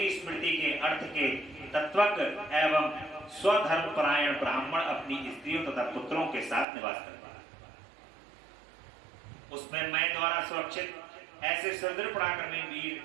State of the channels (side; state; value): left; drops out; at 6.7 s